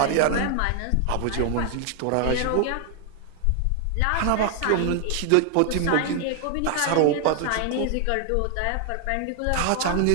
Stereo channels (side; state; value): both; different; correlation 0.00